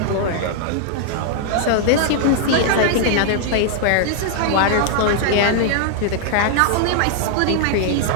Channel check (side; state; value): both; different; correlation 0.00